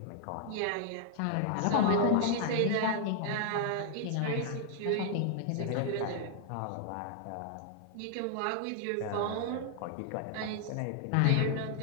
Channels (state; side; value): different; both; correlation -0.01